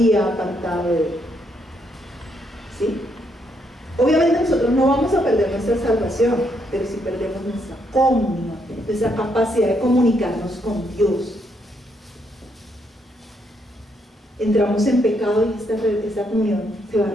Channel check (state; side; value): normal; both; correlation 0.75